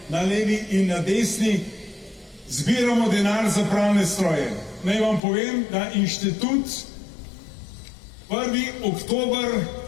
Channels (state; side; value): drops out; right; at 5.2 s